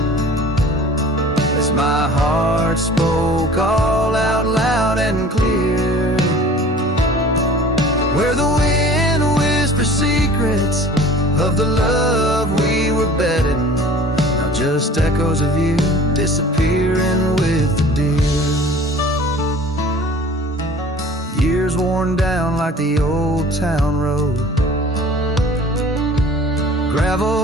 as my heart spoke all out loud and clear. Where the wind whispers secrets of the love we were betting, now just echoes of you disappearing with the deer. Years worn down like the old town road,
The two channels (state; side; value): normal; both; correlation 0.46